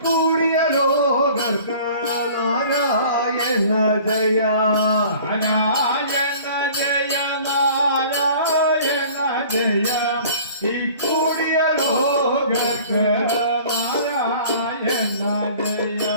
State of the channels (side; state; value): both; inverted; correlation -0.48